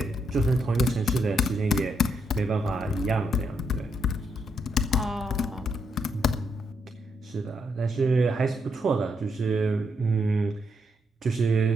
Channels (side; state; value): both; normal; correlation 0.78